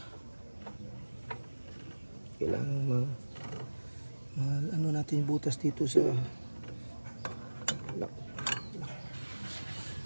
Kailangan ano natin butas dito sa lap.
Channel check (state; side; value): inverted; both; correlation -1.00